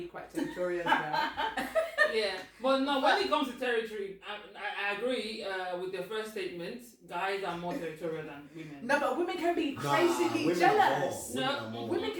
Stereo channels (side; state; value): both; identical; correlation 1.00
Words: quite territorial as well. Yeah, but no, when it comes to territory, I agree with the first statement. Guys are more territorial than women. No, but women can be crazily jealous. Women